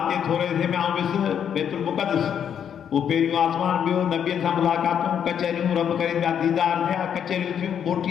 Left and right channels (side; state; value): right; quieter; 8.5 dB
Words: जे थोरे से में आउं वियुसि बैतुल मुक़द्दस। उहो पहिरियों आसमान, ॿियो नबियनि सां मुलाक़ातूं, कचहरियूं रब करीम जा दीदार थिया, कचहरियूं थियूं,